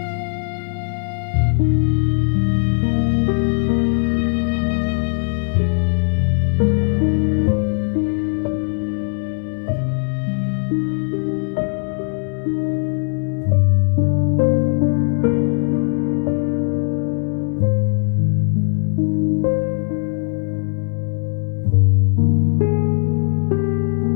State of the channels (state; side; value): silent; right; 58 dB below the other